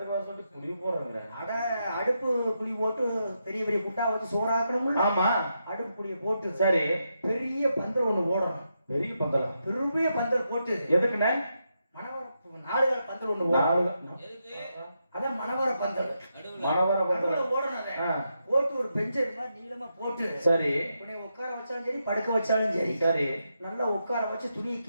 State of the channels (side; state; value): both; inverted; correlation -0.83